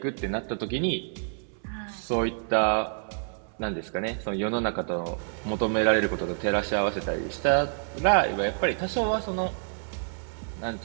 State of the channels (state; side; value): silent; left; 59 dB below the other